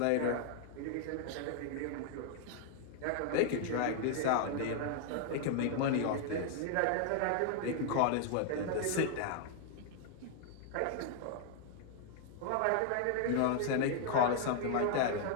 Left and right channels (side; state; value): both; different; correlation 0.00